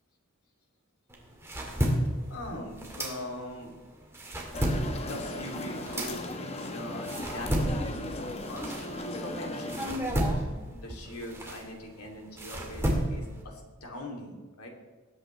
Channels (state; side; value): normal; both; correlation 0.69